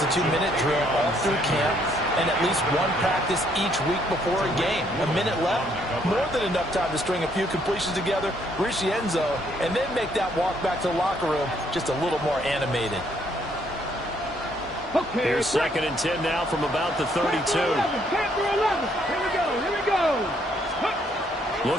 a 2-minute drill all through camp and at least one practice each week before a game. A minute left, more than enough time to string a few completions together, reach the end zone, and then make that walk back to the locker room just a little more animated. Here's 2nd and 10 now from about the 32. Here we go.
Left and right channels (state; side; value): normal; both; correlation 0.69